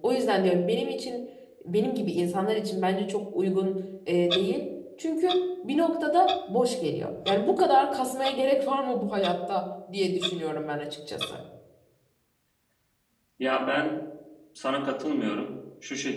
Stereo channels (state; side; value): identical; both; correlation 1.00